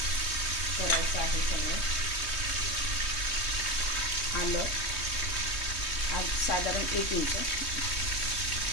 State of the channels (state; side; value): late; right; 3.2 ms